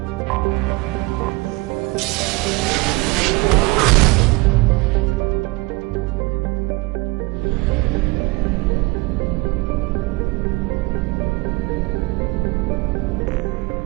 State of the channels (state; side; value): quieter; left; 24.3 dB